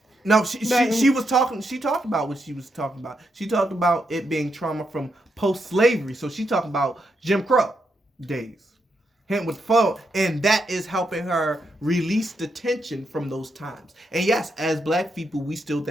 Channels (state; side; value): normal; both; correlation 0.81